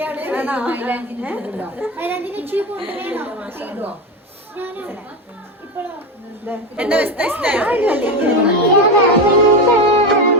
എന്റെ അവസ്ഥ ഇഷ്ടയോ?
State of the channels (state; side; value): normal; both; correlation 0.16